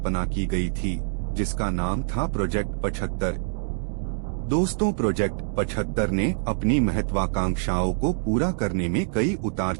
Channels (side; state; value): left; silent; 61 dB below the other